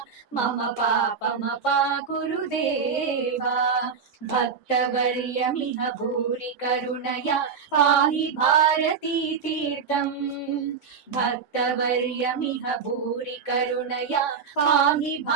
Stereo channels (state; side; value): quieter; left; 6.1 dB